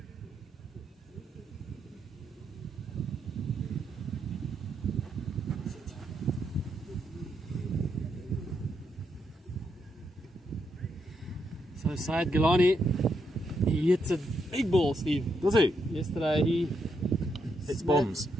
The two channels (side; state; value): both; normal; correlation 0.80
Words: So Syed Galani, he hits a big ball, Steve. Does he? Yesterday he It's bombs.